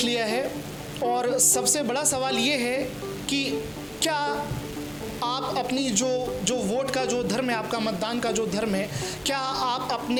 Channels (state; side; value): identical; both; correlation 1.00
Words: लिया है और सबसे बड़ा सवाल ये है कि क्या आप अपनी जो वोट का जो धर्म है, आपका मतदान का जो धर्म है, क्या आप